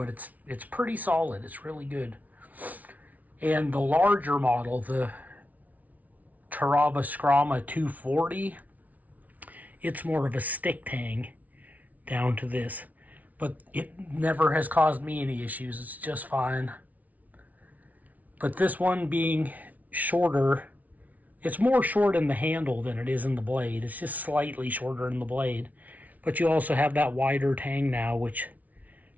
it's pretty solid. It's really good. And the larger model, the Terava Skrama 240, it's more of a stick tang down to this. But it never has caused me any issues. It's just fine. But this one being shorter, it's more short in the handle than it is in the blade. It's just slightly shorter in the blade. But you also have that wider tang now, which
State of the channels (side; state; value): left; late; 0.073 ms